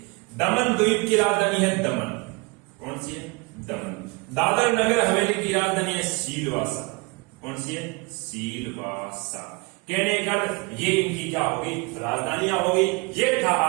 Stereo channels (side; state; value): left; quieter; 28.4 dB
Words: दमन द्वीप की राजधानी है दमन, कौन सी है दमन। दादर नगर हवेली की राजधानी है सीलवासा, कौन सी है सीलवासा। कहने का ये इनकी क्या होगी राजधानियां होगी। ये था